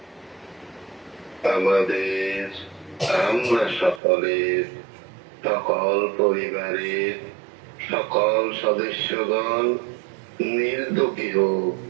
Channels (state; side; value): drops out; left; at 4.0 s